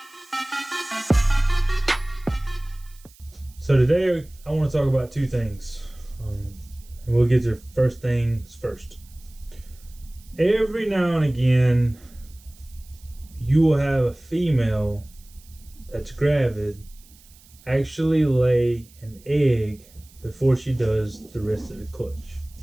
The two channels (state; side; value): noise; right; hiss, 26 dB below the sound